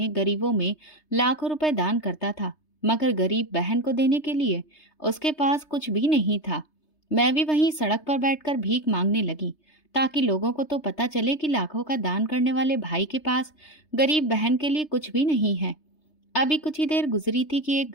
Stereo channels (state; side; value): late; right; 3.3 ms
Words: गरीबों में लाखों रुपए दान करता था, मगर गरीब बहन को देने के लिए उसके पास कुछ भी नहीं था। मैं भी वहीं सड़क पर बैठकर भीख मांगने लगी, ताकि लोगों को तो पता चले कि लाखों का दान करने वाले भाई के पास गरीब बहन के लिए कुछ भी नहीं है। अभी कुछ ही देर गुजरी थी कि एक